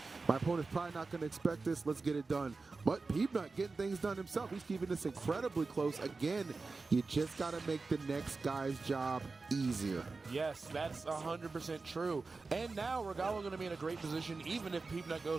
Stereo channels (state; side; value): quieter; left; 4.0 dB